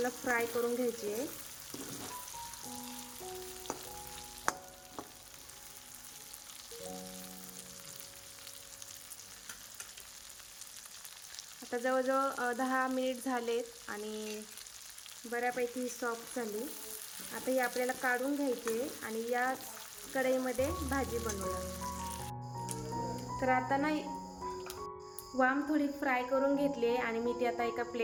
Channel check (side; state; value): both; identical; correlation 1.00